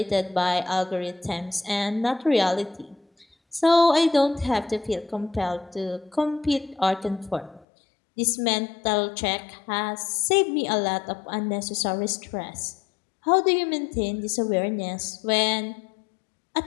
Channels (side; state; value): right; drops out; at 7.7 s